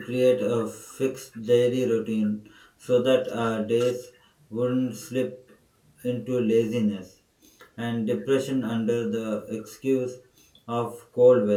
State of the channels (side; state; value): both; identical; correlation 1.00